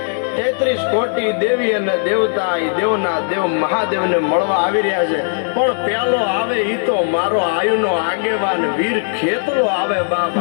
33 કોટી દેવી અને દેવતા એ દેવના દેવ મહાદેવને મળવા આવી રહ્યા છે. પણ પેલો આવે ઈ તો મારો આયુનો આગેવાન વીર ખેતરો આવે. બાપ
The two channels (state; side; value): silent; right; digital silence